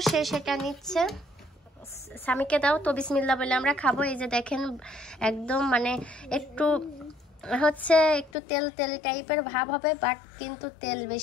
সে সেটা নিচ্ছে। স্বামীকে দাও তো, বিসমিল্লাহ বলে আমরা খাবো। এই যে দেখেন একদম মানে একটু হচ্ছে একটু তেল টাইপের ভাব হবে, বাট কিন্তু তেল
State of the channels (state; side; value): drops out; right; at 8.3 s